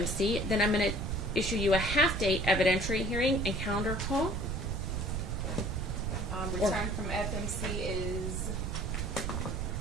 then I'm going to issue you a half-day evidentiary hearing and calendar call. Return from FMC is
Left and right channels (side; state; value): right; noise; rumble, 2 dB below the sound